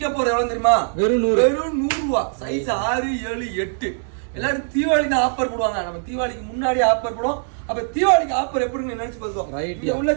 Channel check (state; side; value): silent; left; digital silence